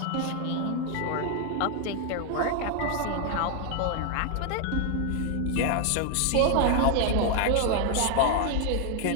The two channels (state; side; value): different; both; correlation 0.00